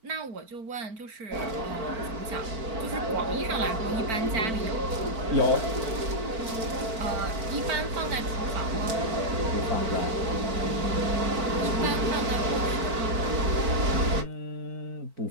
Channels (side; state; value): left; late; 4.4 ms